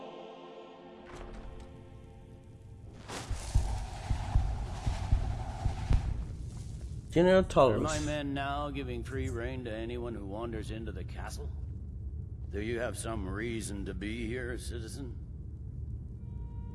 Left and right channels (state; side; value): identical; both; correlation 1.00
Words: General Are Tullis. my men now giving free rein to anyone who wanders into the castle? Do you have some reason to be here, citizen?